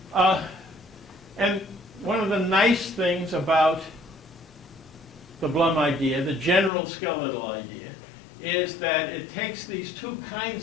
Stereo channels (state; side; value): drops out; right; at 6.7 s